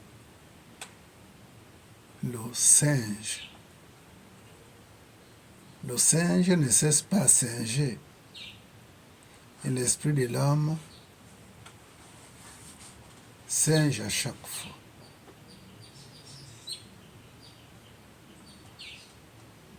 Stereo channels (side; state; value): both; identical; correlation 1.00